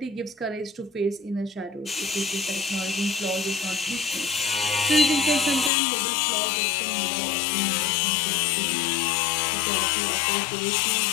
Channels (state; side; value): drops out; right; at 5.7 s